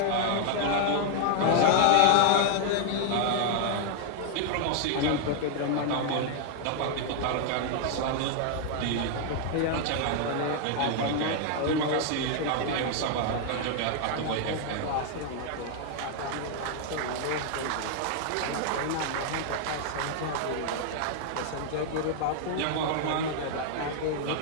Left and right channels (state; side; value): different; both; correlation 0.00